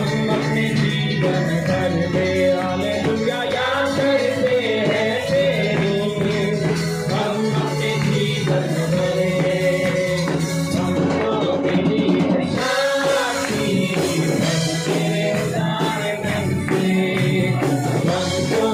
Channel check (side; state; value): both; identical; correlation 1.00